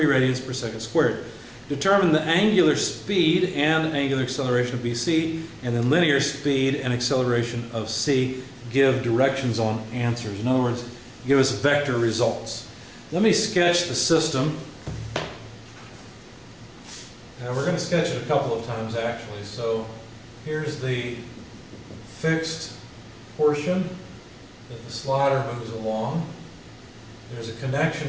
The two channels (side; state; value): both; identical; correlation 1.00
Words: radians per second squared. Determine the angular speed and angular acceleration of BC, and then linear speed and acceleration of C. Give directions on answers. In other words, give us vector results. Let me sketch the system. Now we're going to sketch it a couple of times actually. So here's the fixed portion that the slider moves along. There's a